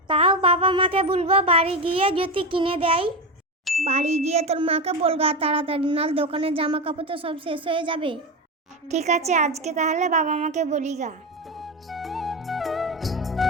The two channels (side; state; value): both; normal; correlation 0.16